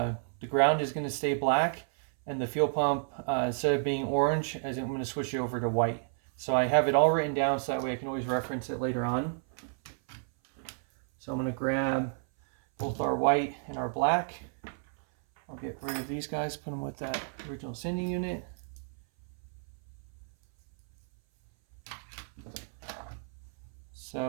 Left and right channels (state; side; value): silent; left; 57 dB below the other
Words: ground is going to stay black, and the fuel pump, instead of being orange, I'm going to switch it over to white. So I have it all written down so that way I can always reference it later on. So I'm going to grab both our white and our black. I'll get rid of these guys, put them with that original sending unit.